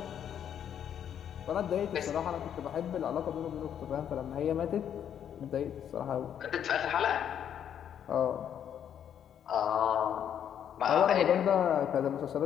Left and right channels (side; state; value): right; quieter; 9.2 dB